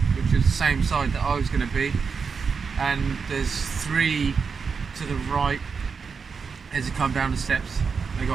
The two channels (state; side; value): quieter; left; 5.5 dB